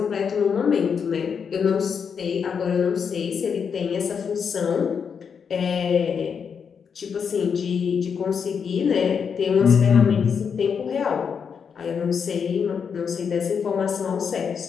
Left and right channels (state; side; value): quieter; right; 6.6 dB